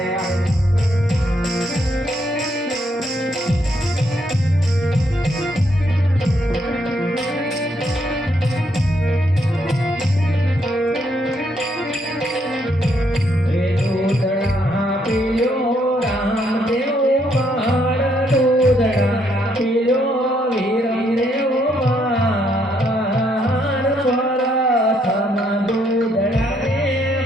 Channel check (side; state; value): both; normal; correlation 0.73